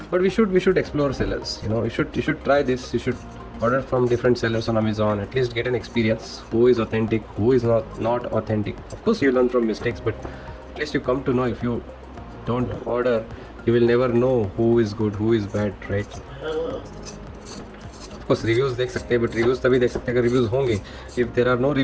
But we should explore sellers. You should try this. You should order from different sellers on Amazon. At least get an experience. Who is authentic? Who is not authentic? Of course, you learn from mistakes, but at least you come to know. If you don't order, you will never know who is good, who is bad, right? Of course, reviews देख सकते हैं, but reviews तभी देख सकते हैं अगर reviews होंगे. If there are no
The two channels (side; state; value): both; identical; correlation 1.00